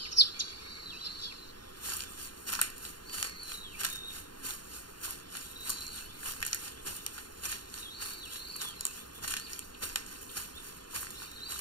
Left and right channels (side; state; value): right; late; 0.71 ms